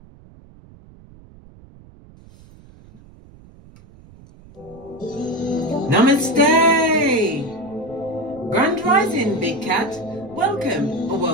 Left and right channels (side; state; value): right; noise; rumble, 23 dB below the sound